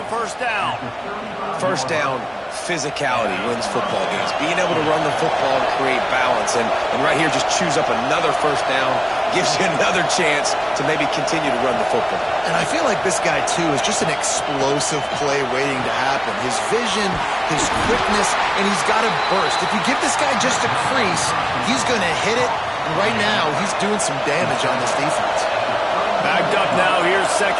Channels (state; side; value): identical; both; correlation 1.00